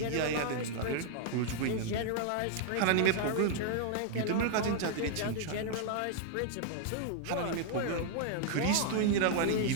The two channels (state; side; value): different; both; correlation 0.00